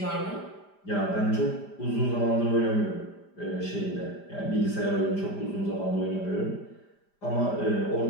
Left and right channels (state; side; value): late; right; 5.0 ms